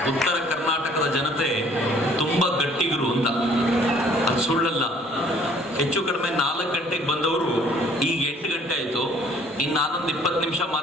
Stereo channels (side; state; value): both; normal; correlation 0.57